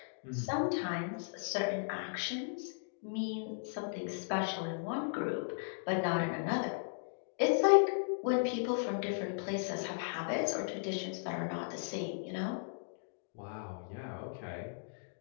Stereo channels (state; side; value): silent; right; digital silence